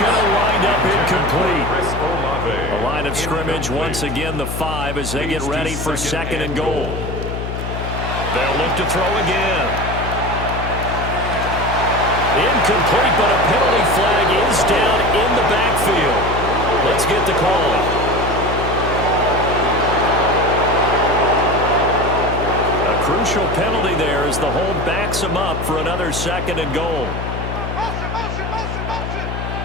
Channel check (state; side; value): noise; left; hum, 5 dB below the sound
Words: to wind up incomplete. A line of scrimmage once again, the 5 as they get ready for 2nd and goal. They'll look to throw again. Incomplete, but a penalty flag is down in the backfield. Let's get the call. A crucial penalty there as the hold backs him up for another 2nd and goal.